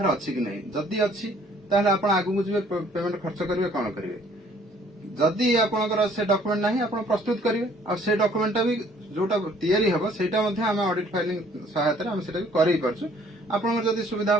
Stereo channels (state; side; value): normal; both; correlation 0.59